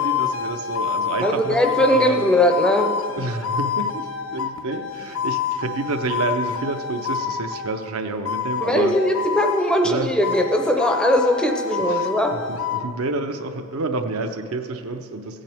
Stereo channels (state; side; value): normal; both; correlation 0.37